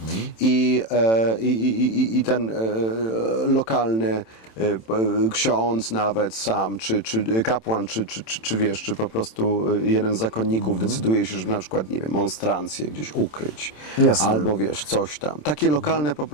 i ten lokalny ksiądz nawet sam, czy kapłan, czy po prostu jeden z zakonników decyduje się, żeby na przykład, nie wiem, monstrancję gdzieś ukryć. Jasne. Albo coś tam. Takie lokalne po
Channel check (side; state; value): right; late; 27 ms